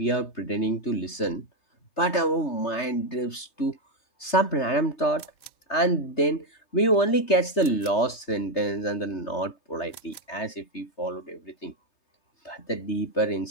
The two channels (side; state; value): right; late; 3.3 ms